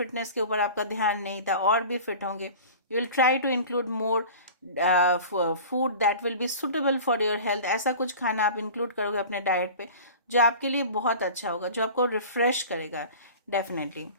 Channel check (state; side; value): inverted; both; correlation -0.38